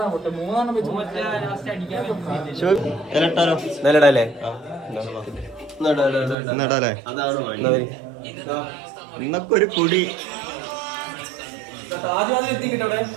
നടല്ലേ ഇന്നൊക്കെ ഒരു പൊടി.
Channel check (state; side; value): drops out; left; at 6.4 s